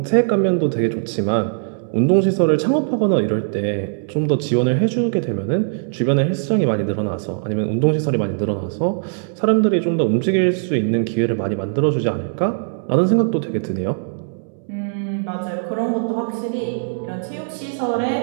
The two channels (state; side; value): silent; left; digital silence